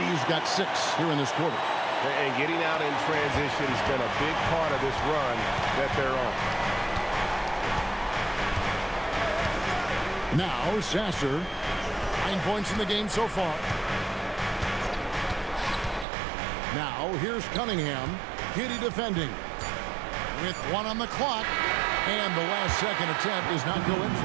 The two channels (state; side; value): drops out; left; at 16.1 s